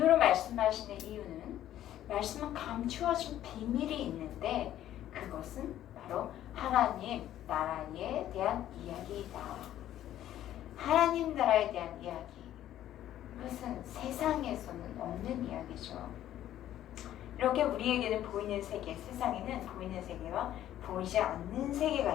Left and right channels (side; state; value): right; quieter; 12.3 dB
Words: 말씀하시는 이유는 말씀은 감추어진 비밀이 있는데 그것은 바로 하나님 나라에 대한 이야기이다. 하나님 나라에 대한 이야기. 그것은 세상에서는 없는 이야기죠. 이렇게 우리에게는 보이는 세계, 세상에는 보이는 세계와 보이지 않는 세계가